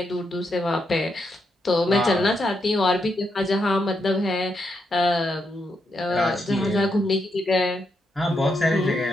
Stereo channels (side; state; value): both; normal; correlation 0.81